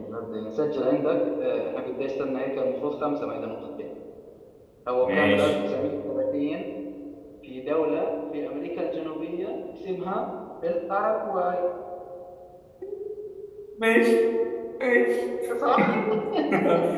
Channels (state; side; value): identical; both; correlation 1.00